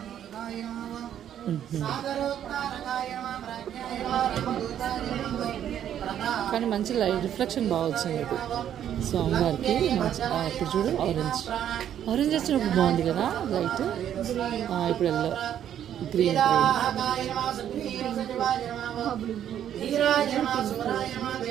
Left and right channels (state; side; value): quieter; left; 10.2 dB